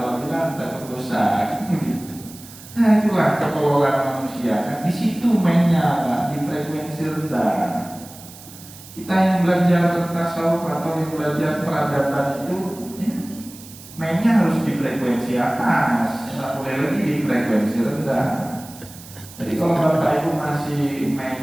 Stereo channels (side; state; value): right; noise; hiss, 18 dB below the sound